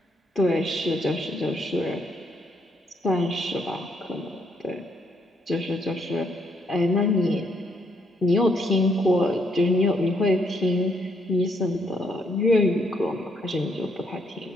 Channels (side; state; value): both; normal; correlation 0.73